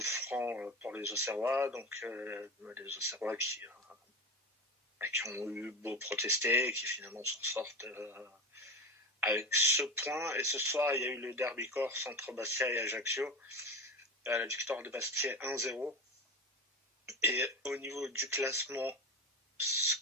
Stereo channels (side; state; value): both; normal; correlation 0.26